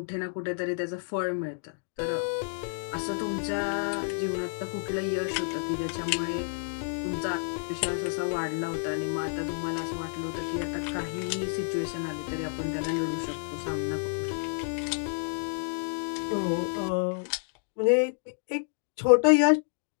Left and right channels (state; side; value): silent; right; digital silence